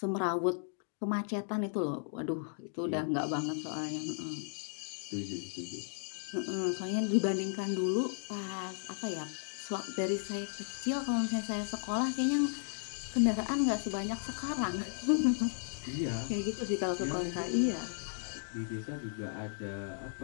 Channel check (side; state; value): right; silent; digital silence